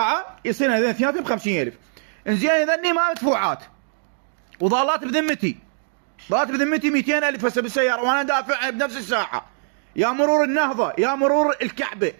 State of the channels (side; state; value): left; silent; digital silence